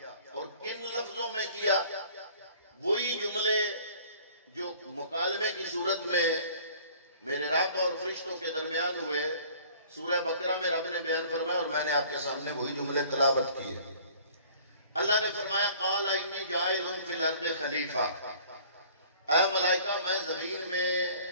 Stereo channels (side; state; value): both; inverted; correlation -0.51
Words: اور کن لفظوں میں کیا؟ وہی جملے جو مکالمے کی صورت میں میرے رب اور فرشتوں کے درمیان ہوئے سورہ بقرہ میں رب نے بیان فرمایا، اور میں نے آپ کے سامنے وہی جملے تلاوت کیے۔ اللہ نے فرمایا قال انی جاعل فی الارض خلیفہ، اے ملائکہ میں زمین میں